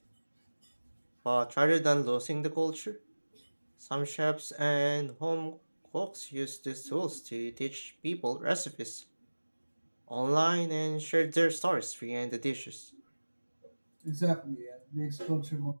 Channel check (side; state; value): both; inverted; correlation -1.00